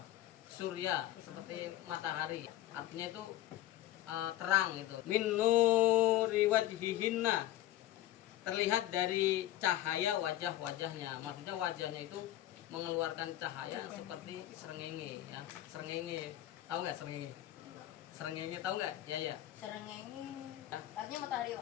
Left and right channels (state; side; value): quieter; right; 14.1 dB